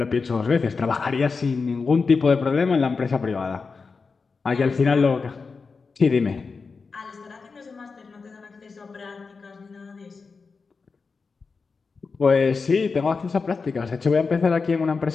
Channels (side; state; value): right; quieter; 4.7 dB